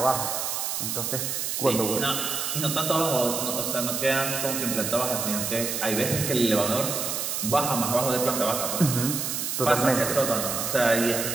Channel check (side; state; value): right; noise; hiss, 2 dB below the sound